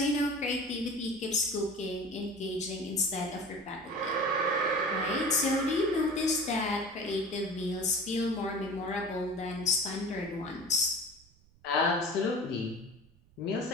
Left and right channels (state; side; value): noise; right; rumble, 28 dB below the sound